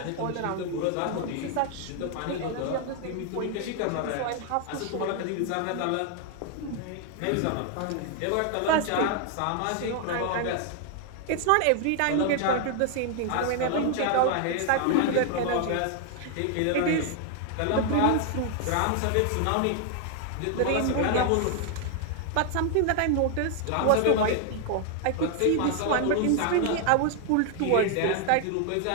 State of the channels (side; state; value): both; different; correlation 0.00